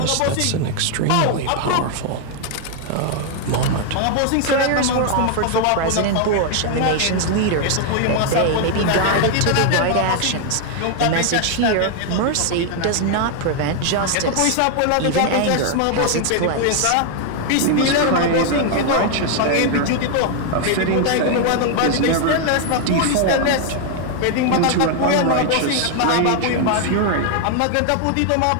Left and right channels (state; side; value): different; both; correlation 0.00